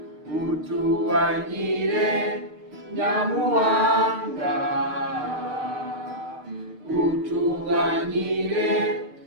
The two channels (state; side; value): late; left; 6.6 ms